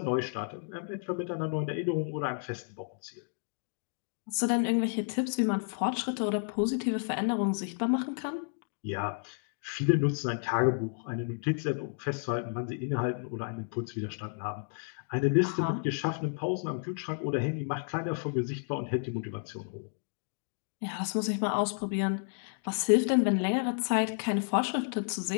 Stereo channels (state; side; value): silent; right; 57 dB below the other